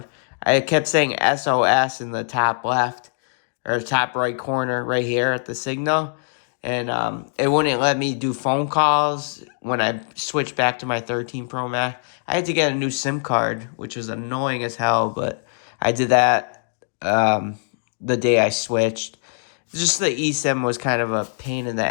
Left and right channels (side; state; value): right; silent; digital silence